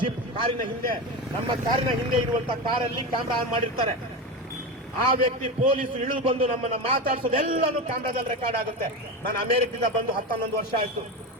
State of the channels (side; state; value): both; normal; correlation 0.20